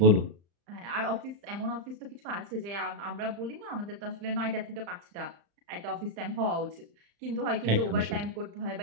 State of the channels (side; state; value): left; late; 35 ms